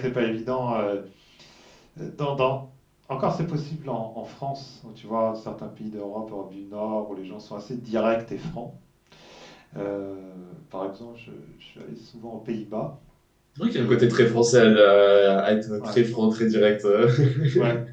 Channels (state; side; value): identical; both; correlation 1.00